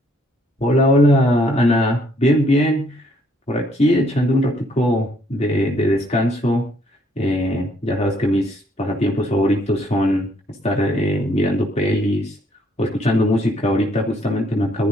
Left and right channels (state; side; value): normal; both; correlation 0.67